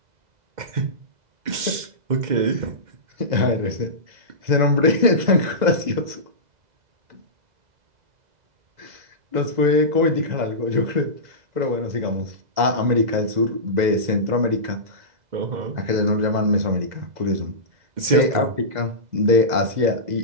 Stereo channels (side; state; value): left; late; 2.0 ms